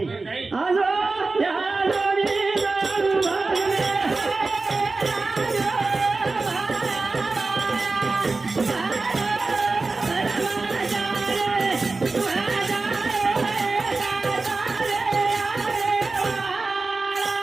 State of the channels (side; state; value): left; quieter; 3.7 dB